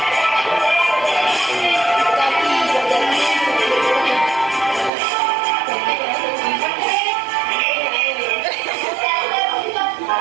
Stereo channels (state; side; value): drops out; left; at 4.9 s